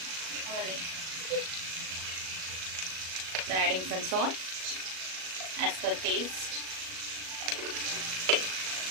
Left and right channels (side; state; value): left; late; 37 ms